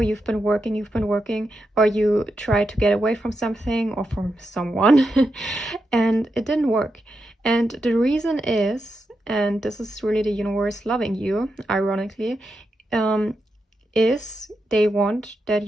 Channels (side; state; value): both; normal; correlation 0.86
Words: you've been working, or you try to get away from something or from someone, and it didn't work. And the reason is, and this is really the universe loving you, ironically, is they want that